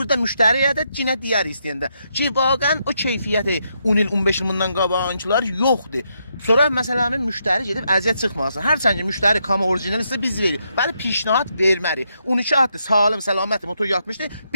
müştəriyə də yine deyər istəyəndə ki, vaqən o keyfiyyəti 10 il, 15 il bundan qabağınçılar yoxdur. Sonra məsələnin müştəri gedib əziyyət çıxmasın. Hərçənd ki, müştəri kama orijinal isə biz veririk. Bəli, pişnahət vermərik. 12 atdır, sağlam, səlamətli motor yatmışdı.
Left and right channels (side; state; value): both; inverted; correlation -0.79